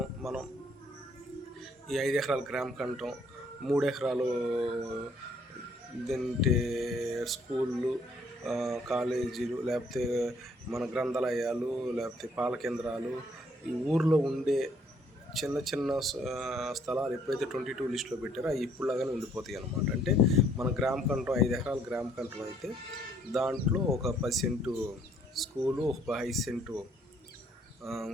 మనం ఈ 5 ఎకరాల కంటం, 3 ఎకరాలు ఇదంటే స్కూళ్ళు, కాలేజీలు, లేకపోతే మన గ్రంథాలయాలు, లేకపోతే పాల కేంద్రాలు, ఈ ఊర్లో ఉండే చిన్న చిన్న స్థలాలు ఎప్పుడైతే 22 లిస్టులో పెట్టారో అవి ఇప్పుడులాగానే ఉండిపోతాయి అన్నమాట. అంటే మన కంటం 5 ఎకరాల కంటం అయితే దాంట్లో ఒక 10 సెంటు స్కూలు, ఒక 5 సెంటు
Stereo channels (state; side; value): normal; both; correlation 0.64